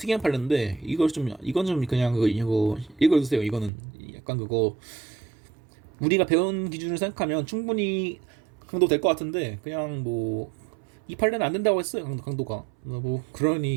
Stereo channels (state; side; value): drops out; left; at 3.7 s